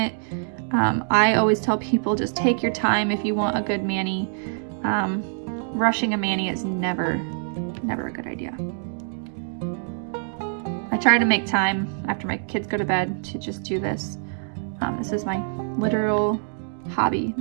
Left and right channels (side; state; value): left; silent; digital silence